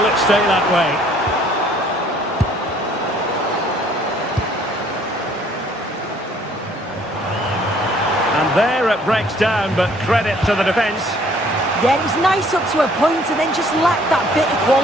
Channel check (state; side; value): normal; both; correlation 0.60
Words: it stay that way? And there it breaks down, but credit to the defence. Yeah, it was nice up to a point and then just lacked that bit of